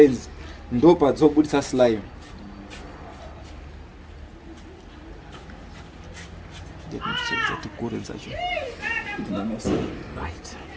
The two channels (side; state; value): both; identical; correlation 1.00